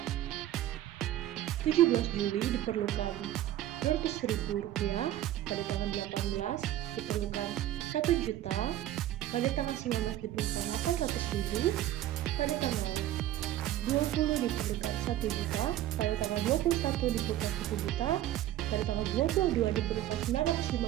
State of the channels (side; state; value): left; quieter; 13.2 dB